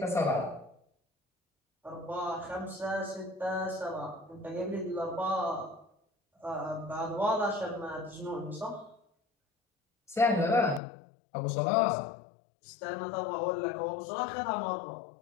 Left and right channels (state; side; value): drops out; right; at 10.8 s